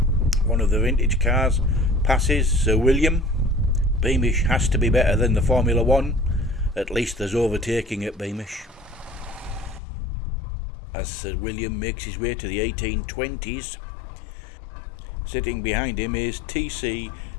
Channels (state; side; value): drops out; right; at 9.8 s